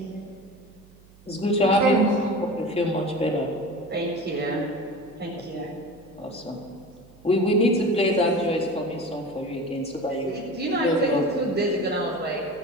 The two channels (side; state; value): right; noise; hum, 26 dB below the sound